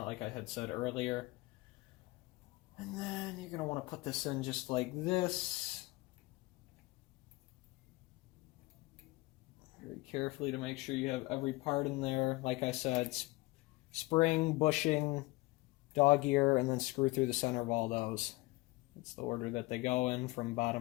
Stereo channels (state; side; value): quieter; right; 21.6 dB